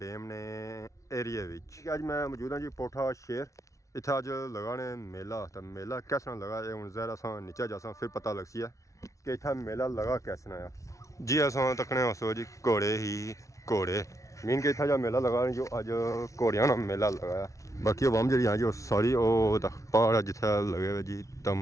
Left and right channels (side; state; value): right; late; 0.15 ms